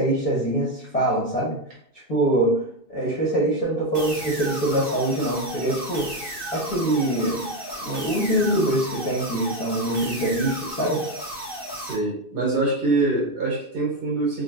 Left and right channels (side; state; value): left; late; 2.6 ms